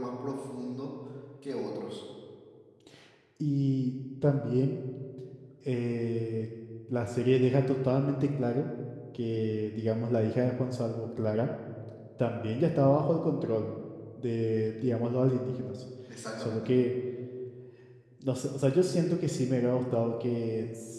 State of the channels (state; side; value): identical; both; correlation 1.00